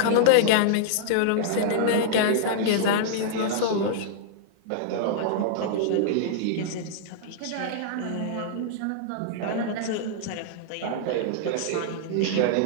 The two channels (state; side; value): different; both; correlation -0.01